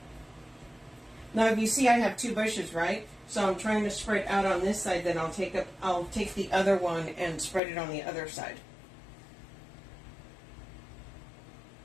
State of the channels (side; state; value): right; drops out; at 7.6 s